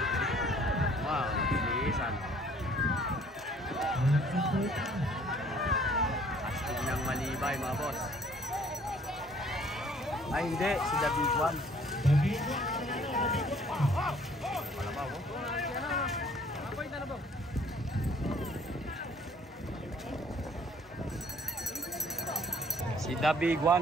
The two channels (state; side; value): normal; both; correlation 0.57